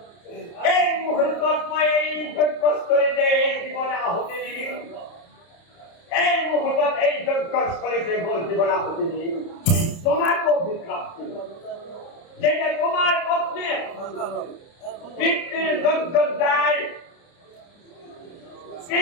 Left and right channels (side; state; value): right; late; 30 ms